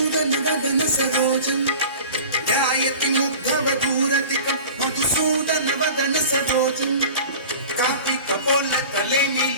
वदन सरोजम् ध्यायति मुग्धवधूरधिकम् मधुसूदन वदन सरोजम् कापि कपोल तले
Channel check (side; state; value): both; inverted; correlation -0.39